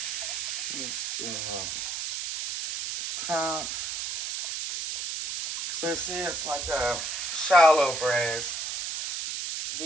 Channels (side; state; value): right; noise; hiss, 1 dB below the sound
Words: Let's do a cup. So you see, it's like a shallow braise.